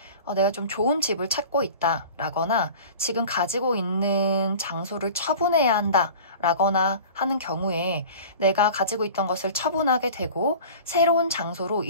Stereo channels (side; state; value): both; inverted; correlation -0.40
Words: 내가 좀 좋은 집을 찾고 있다 라거나, 지금 가지고 있는 장소를 처분해야 한다 라거나 하는 경우에 내가 가지고 있던 것을 처분하게 되고 새로운 장소로